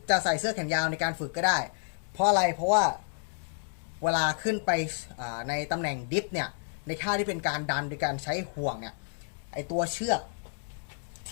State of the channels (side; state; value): right; silent; digital silence